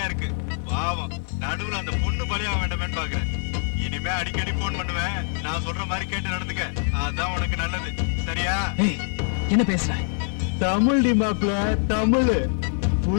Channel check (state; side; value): silent; right; digital silence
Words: இருக்கு. பாவம், நடுவுல அந்த பொண்ணு பலியாக வேண்டாமேன்னு பாக்குறேன். இனிமே அடிக்கடி போன் பண்ணுவேன். நான் சொல்ற மாதிரி கேட்டு நடந்துக்க, அதான் உனக்கு நல்லது. சரியா? ஏய், என்ன பேசுற? தமிழ் டி மாப்ள, தமிழ்